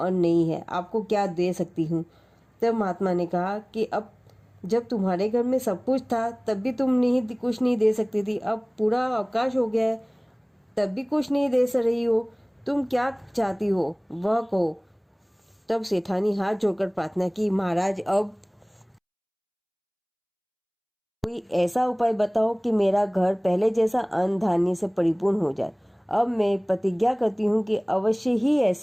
नहीं है, आपको क्या दे सकती हूँ। तब महात्मा ने कहा कि अब जब तुम्हारे घर में सब कुछ था तब भी तुम कुछ नहीं दे सकती थी, अब पूरा अवकाश हो गया है तब भी कुछ नहीं दे रही हो, तुम क्या चाहती हो वह कहो। तब सेठानी हाथ जोड़कर प्रार्थना की, महाराज अब कोई ऐसा उपाय बताओ कि मेरा घर पहले जैसा अन्न धान्य से परिपूर्ण हो जाए। अब मैं प्रतिज्ञा करती हूँ कि अवश्य ही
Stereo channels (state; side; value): identical; both; correlation 1.00